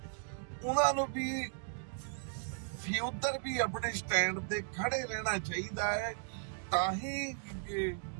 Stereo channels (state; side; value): silent; left; digital silence